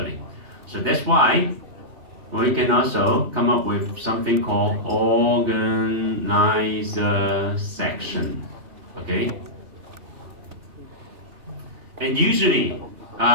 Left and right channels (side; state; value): left; late; 3.4 ms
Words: So that's why we can also come up with something called organizer section. Okay? And usually,